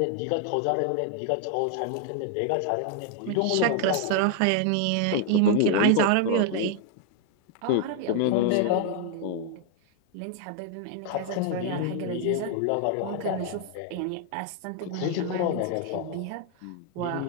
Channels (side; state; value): both; different; correlation 0.00